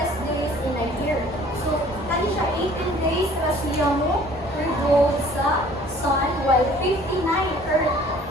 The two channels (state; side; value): normal; both; correlation 0.52